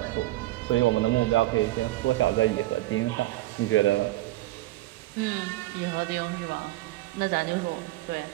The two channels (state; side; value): quieter; left; 17.2 dB